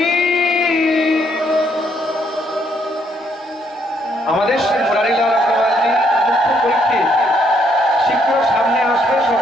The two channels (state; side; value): normal; both; correlation 0.71